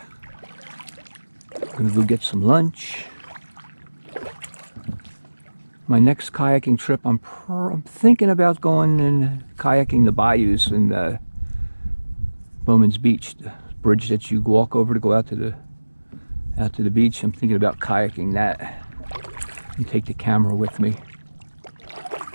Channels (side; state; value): both; inverted; correlation -1.00